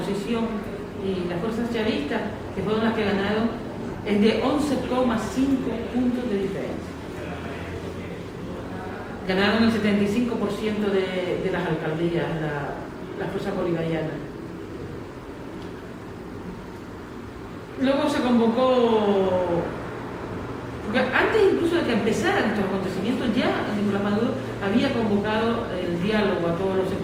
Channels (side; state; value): both; identical; correlation 1.00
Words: y las fuerzas chavistas, que fueron las que ganaron, es de 11,5 puntos de diferencia. Ganaron el 75% de las alcaldías, la fuerza bolivariana. Luego se convocó, porque antes incluso de que empezaran estos acontecimientos, ya Nicolás Maduro había convocado el diálogo a todos los